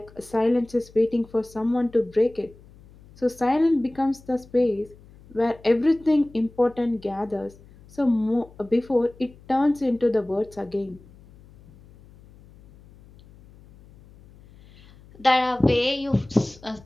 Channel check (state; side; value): noise; left; hum, 24 dB below the sound